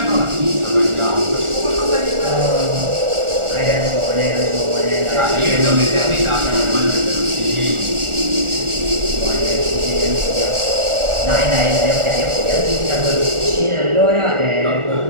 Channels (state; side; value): late; left; 1.4 ms